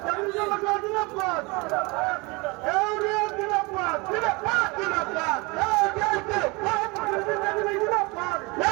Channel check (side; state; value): left; quieter; 26.5 dB